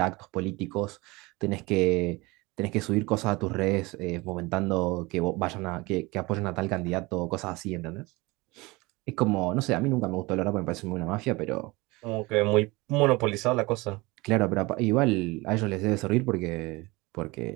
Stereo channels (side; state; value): left; quieter; 23.3 dB